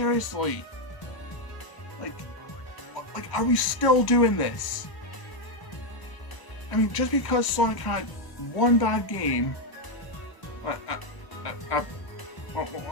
like, are we still doing this? I mean, just because Sonic had one bad game, a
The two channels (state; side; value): late; right; 1.0 ms